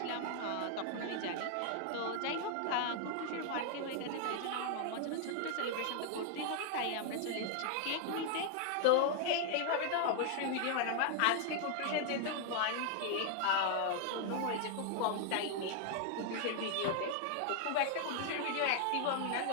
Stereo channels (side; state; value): both; different; correlation 0.00